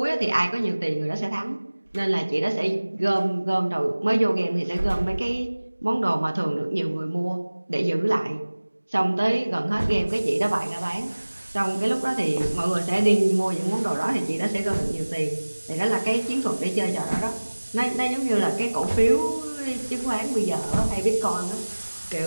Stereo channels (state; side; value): inverted; both; correlation -1.00